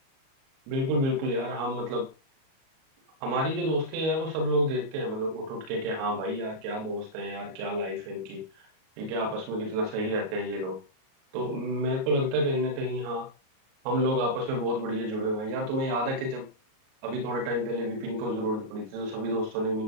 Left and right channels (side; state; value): left; late; 37 ms